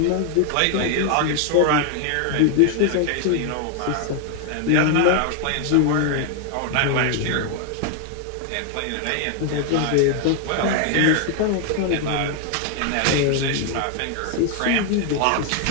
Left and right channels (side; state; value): both; different; correlation 0.00